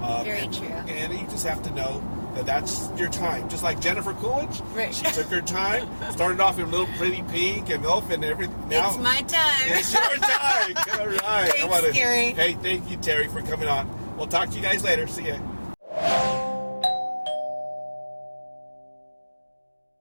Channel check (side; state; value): both; inverted; correlation -1.00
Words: Very true. And you just have to know that that's your time. Just like Jennifer Coolidge, she took her time, started off in a little pretty pink and elf and everything. Now it's my time. It's your time. All right. Thanks, Gary. Hey, thank you, Teri, for coming on. We'll talk to you guys later. See ya.